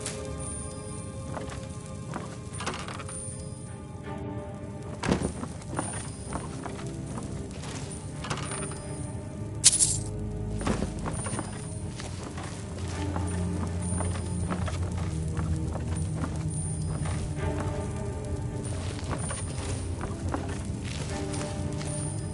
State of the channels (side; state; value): both; identical; correlation 1.00